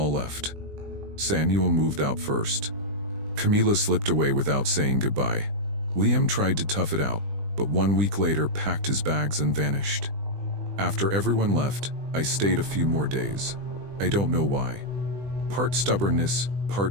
left. Samuel moved out first. Camila slipped away without saying goodbye. Liam tried to tough it out, but 1 week later packed his bags and vanished. After everyone left, I stayed a few more days. I don't know why. Part stubbornness,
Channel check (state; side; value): late; left; 20 ms